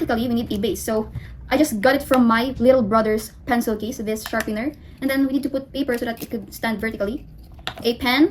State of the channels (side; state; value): both; identical; correlation 1.00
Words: we need a base. So I just got it from my little brother's pencil case, this sharpener. And then we need to put paper so that it could stand vertically. A pen,